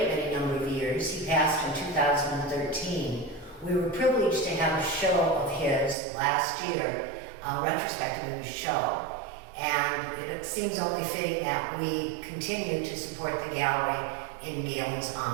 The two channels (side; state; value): left; drops out; at 6.0 s